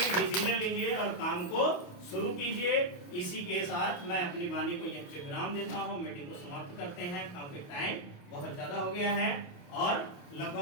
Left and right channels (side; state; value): right; late; 28 ms